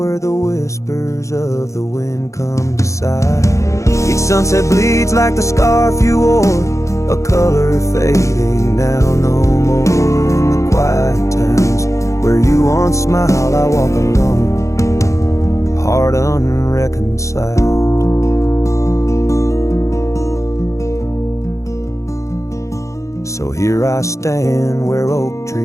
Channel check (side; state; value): right; late; 0.15 ms